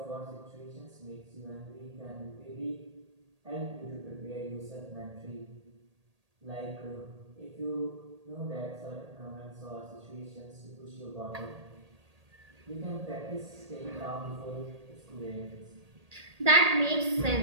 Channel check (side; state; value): left; late; 1.8 ms